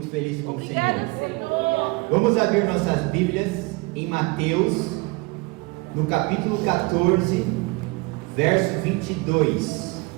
feliz com o Obrigada, Senhor. Vamos abrir nossas Bíblias em Mateus, no capítulo 14, verso 22.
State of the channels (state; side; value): quieter; left; 25.4 dB